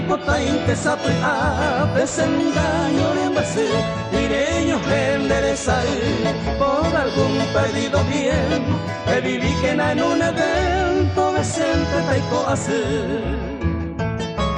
intesapea, desengaño de base, direño enderezar, por algún perdido bien, que viví que en un evento decente taico hacer.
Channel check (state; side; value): identical; both; correlation 1.00